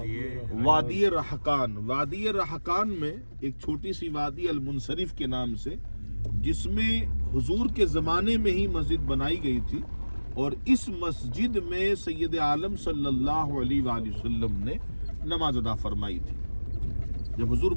وادی رحقان۔ وادی رحقان میں ایک چھوٹی سی وادی المنصرف کے نام سے، جس میں حضور کے زمانے میں ہی مسجد بنائی گئی تھی، اور اس مسجد میں سید عالم صلی اللہ علیہ وآلہ وسلم نے نماز ادا فرمائی تھی۔ جب حضور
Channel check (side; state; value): both; inverted; correlation -1.00